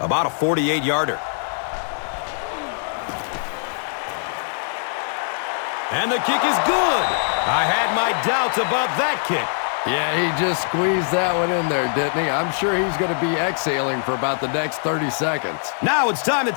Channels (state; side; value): silent; right; 64 dB below the other